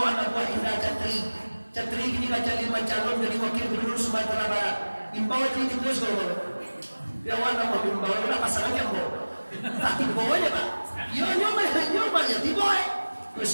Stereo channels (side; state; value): both; inverted; correlation -1.00